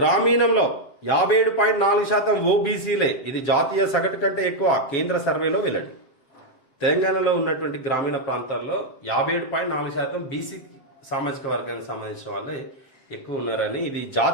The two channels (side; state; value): right; late; 7.3 ms